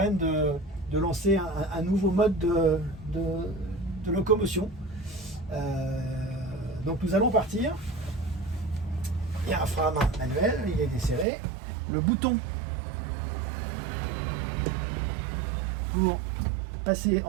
de lancer un nouveau mode de locomotion. Donc nous allons partir. Il y a un frein à main manuel, il est desserré. Le bouton pour passer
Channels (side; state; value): left; drops out; at 11.2 s